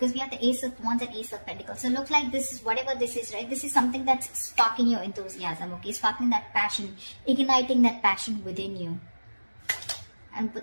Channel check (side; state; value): both; inverted; correlation -1.00